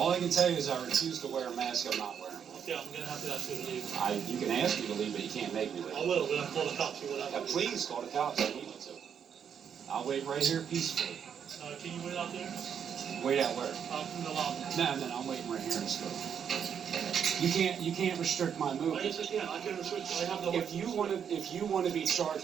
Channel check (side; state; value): left; quieter; 7.9 dB